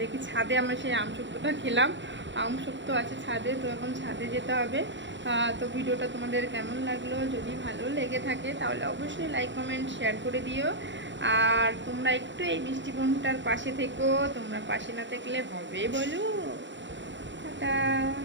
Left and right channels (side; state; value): left; late; 0.54 ms